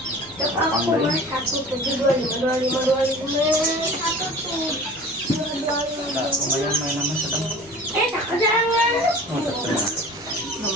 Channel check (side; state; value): left; noise; rumble, 28 dB below the sound